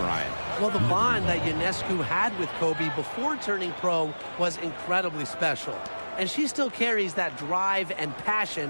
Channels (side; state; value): both; inverted; correlation -1.00